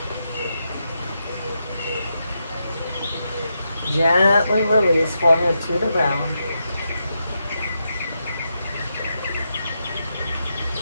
Gently release, forehead to the ground.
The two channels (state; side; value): inverted; both; correlation -0.84